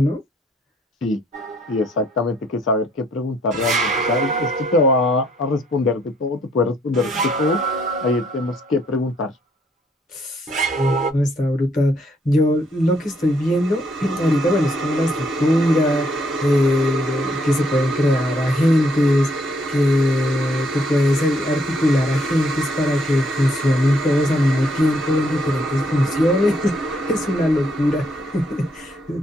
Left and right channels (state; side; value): normal; both; correlation 0.70